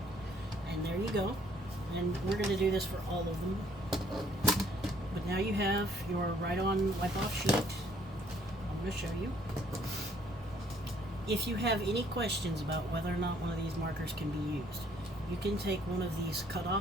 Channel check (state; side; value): normal; both; correlation 0.63